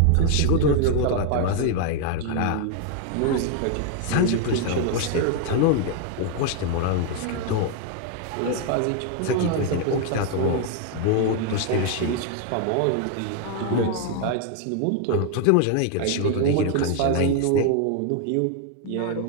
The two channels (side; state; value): both; different; correlation 0.00